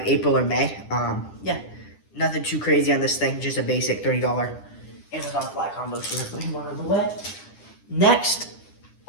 April or May. Yeah, nothing too crazy on this thing, just a basic $30 Amazon fly combo. So we're putting one on the way. Next,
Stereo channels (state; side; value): late; right; 10 ms